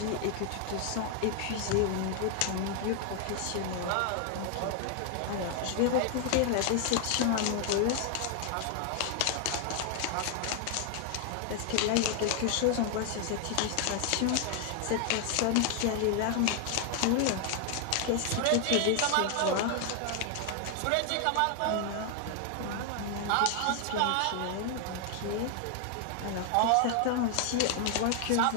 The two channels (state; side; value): different; both; correlation 0.00